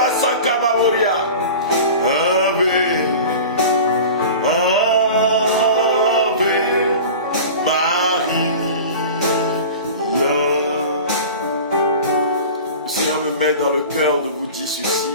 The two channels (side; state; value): both; inverted; correlation -0.36